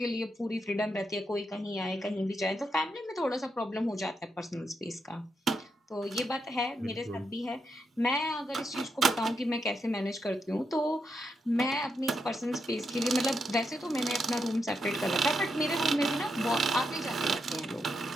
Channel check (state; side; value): normal; both; correlation 0.83